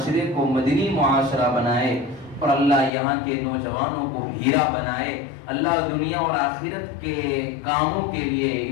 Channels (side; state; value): right; drops out; at 2.9 s